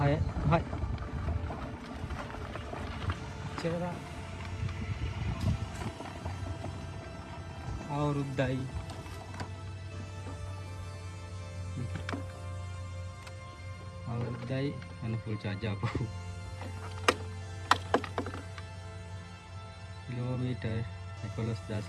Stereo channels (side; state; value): both; identical; correlation 1.00